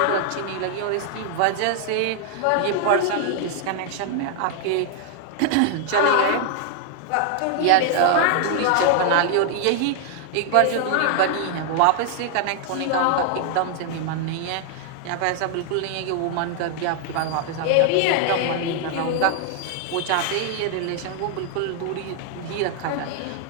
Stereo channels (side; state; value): both; different; correlation 0.00